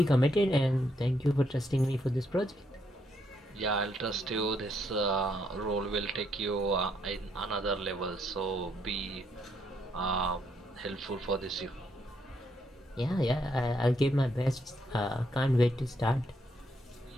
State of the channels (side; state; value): both; normal; correlation 0.75